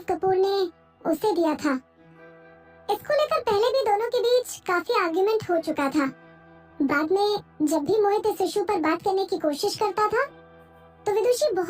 कपूर ने उसे दिया था। इसको लेकर पहले भी दोनों के बीच काफी आर्गुमेंट हो चुका था। बाद में जब भी मोहित इस इशू पर बात करने की कोशिश करता था तो विदुषी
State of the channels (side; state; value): both; identical; correlation 1.00